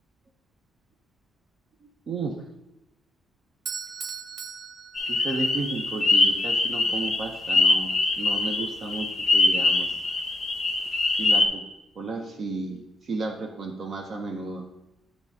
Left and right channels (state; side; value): normal; both; correlation 0.81